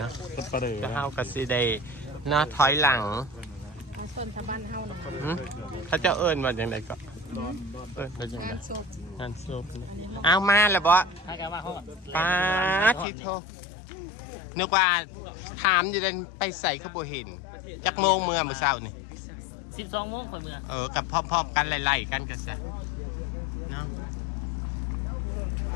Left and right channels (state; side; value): drops out; right; at 13.1 s